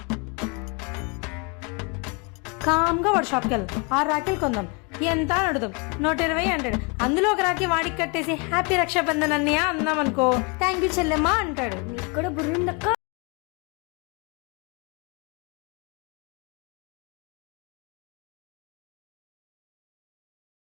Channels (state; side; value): quieter; right; 30.8 dB